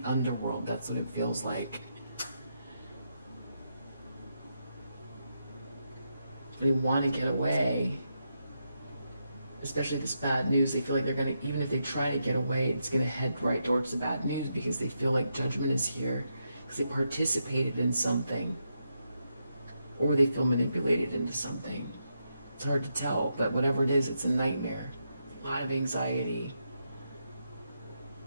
underworld. That's what it feels like. They want to get away, especially this bad news. They feel like they're going to, even if they try to get away, it's going to head right towards the bad news because they feel like judgment is here because they participated in something, or they feel manipulated into something. It's hard to tell, but whatever it is, it's a nightmare. A lot of anxiety.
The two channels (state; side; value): inverted; both; correlation -0.83